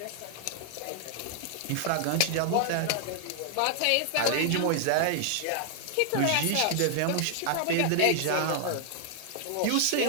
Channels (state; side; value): different; both; correlation 0.00